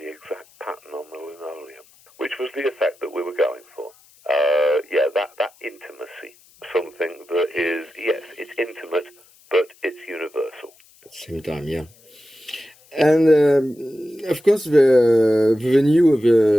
exact pattern on the linoleum," which was the effect that we were going for. That intimacy, something that is, yes, it's intimate, but it's universal. At the same time, yeah. And of course, the venue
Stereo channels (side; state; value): left; noise; hiss, 29 dB below the sound